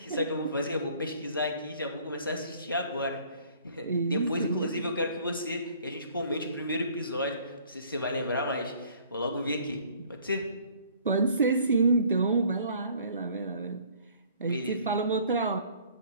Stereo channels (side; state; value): both; inverted; correlation -0.56